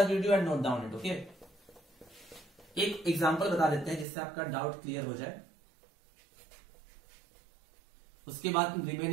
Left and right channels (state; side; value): drops out; left; at 4.0 s